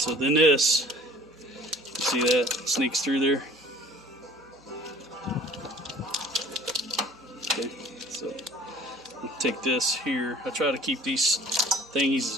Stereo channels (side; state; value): both; normal; correlation 0.48